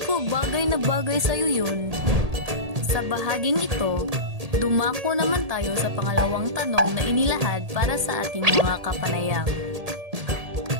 ko, bagay na bagay sa'yo yun. Sa bahaging ito, dumako naman tayo sa pangalawang tanong na inilahad para sa ating mga kapanayam.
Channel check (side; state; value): left; late; 1.8 ms